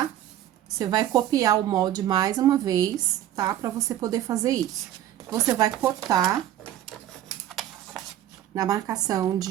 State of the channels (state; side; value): quieter; left; 12.2 dB